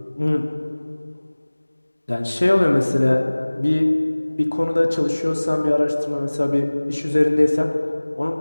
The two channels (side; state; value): both; inverted; correlation -1.00